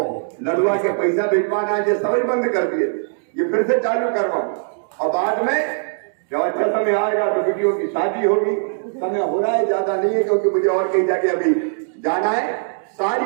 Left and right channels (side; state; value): left; silent; digital silence